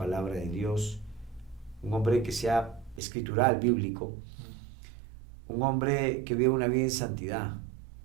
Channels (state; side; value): drops out; left; at 3.0 s